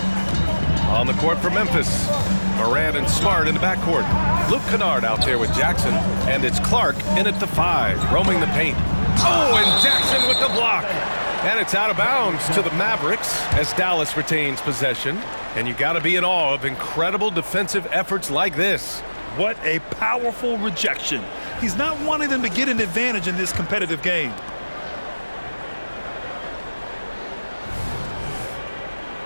On the court for Memphis. Morant and Smart in the backcourt. Luke Kennard out there with Jackson. And it's Clark in at the 5, roaming the paint. Oh, and Jackson with the block. And it's out of bounds to the Mavericks as Dallas retains possession. And you got to be in awe of incredible defensive efforts like this. What a powerful rejection. He's not wanting them to get an advantage in this competitive game.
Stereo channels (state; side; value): inverted; both; correlation -1.00